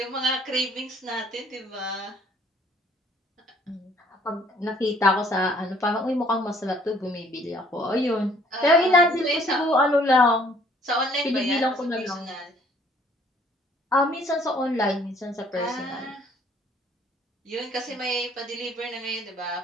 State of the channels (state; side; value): normal; both; correlation 0.60